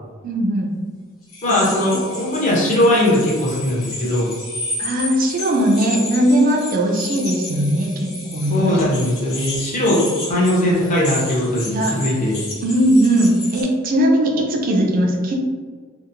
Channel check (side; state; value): both; normal; correlation 0.55